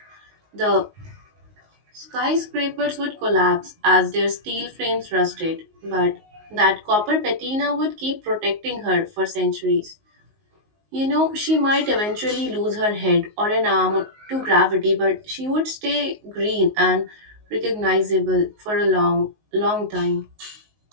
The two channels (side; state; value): left; late; 19 ms